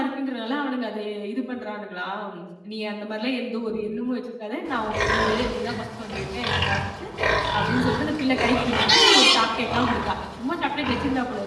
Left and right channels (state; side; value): identical; both; correlation 1.00